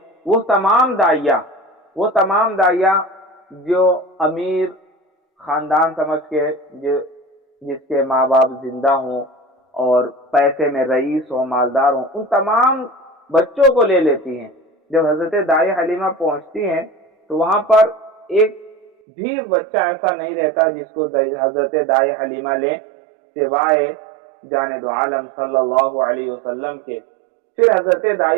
وہ تمام دائیاں جو امیر خاندان سمجھ کے، جس کے ماں باپ زندہ ہوں اور پیسے میں رئیس ہوں، مالدار ہوں، ان تمام بچوں کو لے لیتی ہیں۔ جب حضرت دائی حلیمہ پہنچتی ہیں تو وہاں پر ایک بھی بچہ ایسا نہیں رہتا جس کو حضرت دائی حلیمہ لیں، سوائے جانے دو عالم صلی اللہ علیہ وسلم کے۔ پھر حضرت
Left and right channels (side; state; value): left; drops out; at 18.9 s